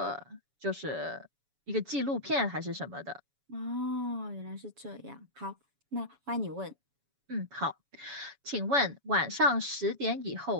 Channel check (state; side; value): late; left; 7.1 ms